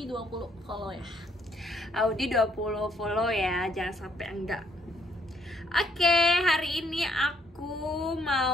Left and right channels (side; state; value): both; normal; correlation 0.69